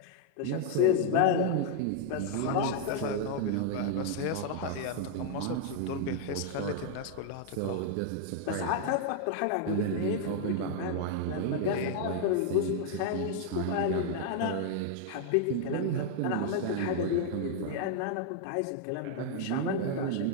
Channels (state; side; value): different; both; correlation 0.00